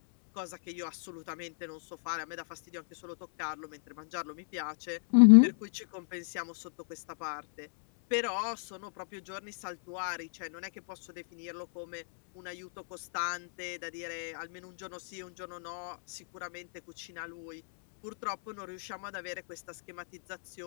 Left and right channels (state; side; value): silent; right; 55 dB below the other